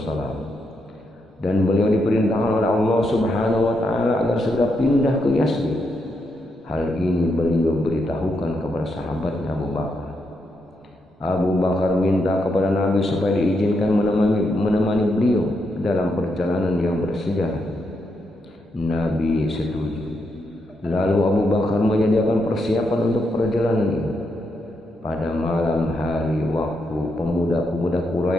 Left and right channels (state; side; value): normal; both; correlation 0.81